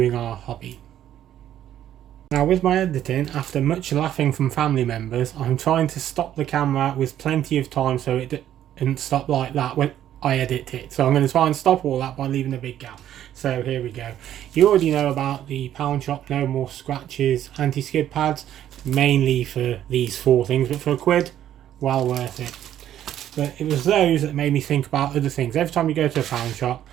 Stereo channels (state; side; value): quieter; left; 11.4 dB